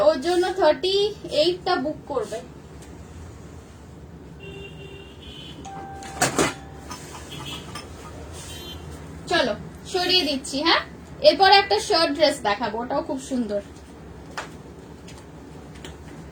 ওর জন্য 38টা বুক করবে। চলো সরিয়ে দিচ্ছি। হ্যাঁ, এরপর একটা শার্ট ড্রেস দেখাবো, ওটাও খুব সুন্দর।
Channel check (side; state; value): both; identical; correlation 1.00